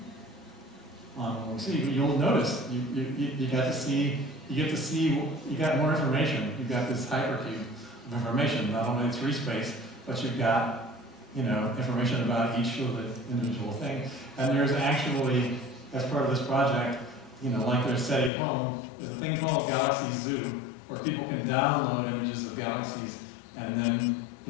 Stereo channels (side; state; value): right; drops out; at 18.3 s